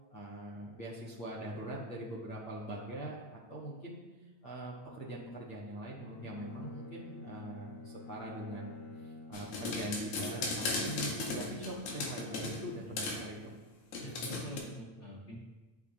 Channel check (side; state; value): right; late; 9.4 ms